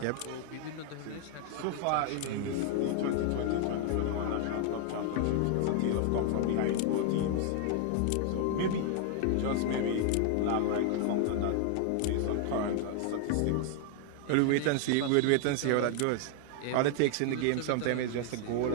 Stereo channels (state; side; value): different; both; correlation 0.00